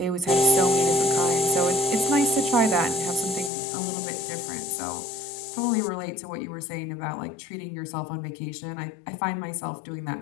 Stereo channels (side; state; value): right; drops out; at 3.5 s